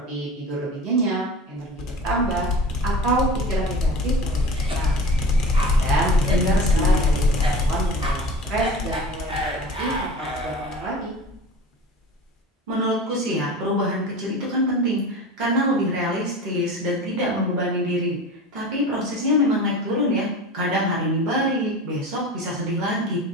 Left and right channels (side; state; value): both; normal; correlation 0.35